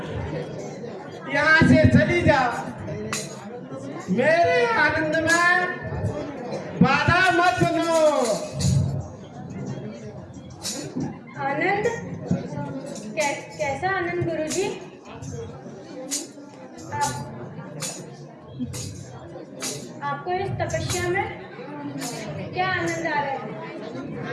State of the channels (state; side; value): identical; both; correlation 1.00